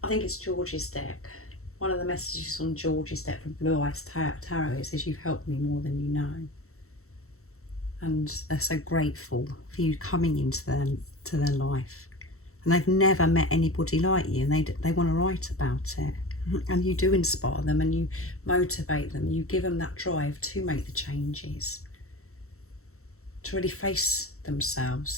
I think it's George's deck. One of the messages on George's deck from Blue Eyes Tarot, it says, you've helped me more than you know. And they're so grateful for you coming into their life. And they've never met anybody like you, and they want to write about it. And you do inspire them, and you motivate them. You give them that drive to make the changes, to really face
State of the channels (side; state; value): right; late; 0.63 ms